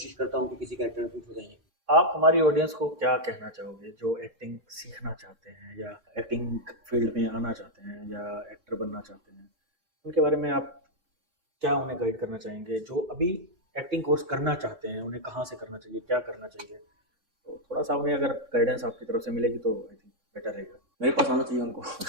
करता हूँ कि किसी कैरेक्टर में फिट हो जाए। आप हमारी ऑडियंस को क्या कहना चाहोगे जो एक्टिंग सीखना चाहते हैं या एक्टिंग फील्ड में आना चाहते हैं या एक्टर बनना चाहते हैं, उनके बारे में आप क्या उन्हें गाइड करना चाहेंगे? जो अभी एक्टिंग कोर्स करना चाहते हैं उन्हें कहाँ से करना चाहिए, क्या करना चाहिए? तो थोड़ा सा उन्हें अगर गाइडेंस आपकी तरफ से मिलेगी तो आई थिंक बेटर रहेगा। मेरे पास आना चाहिए उनको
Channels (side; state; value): left; late; 3.6 ms